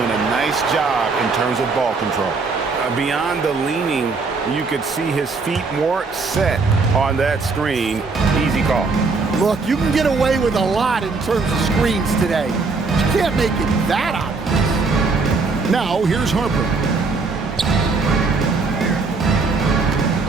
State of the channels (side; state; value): left; quieter; 4.2 dB